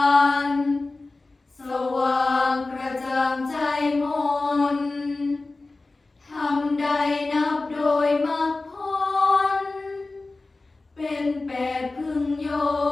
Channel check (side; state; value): right; quieter; 3.4 dB